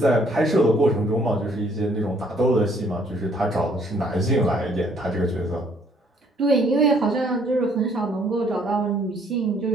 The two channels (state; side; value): normal; both; correlation 0.64